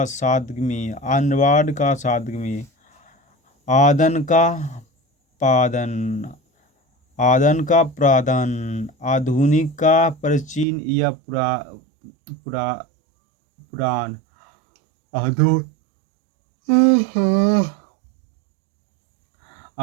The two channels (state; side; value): drops out; left; at 10.7 s